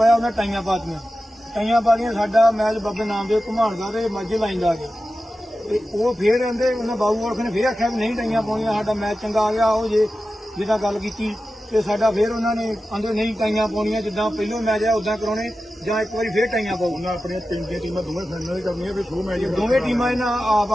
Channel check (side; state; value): both; normal; correlation 0.93